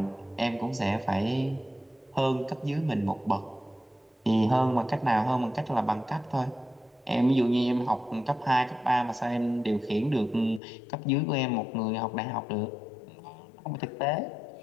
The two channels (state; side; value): drops out; right; at 10.6 s